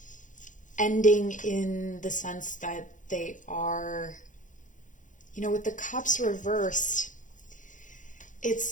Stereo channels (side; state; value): right; late; 0.37 ms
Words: ending in the sense that they are, with the cups reversed,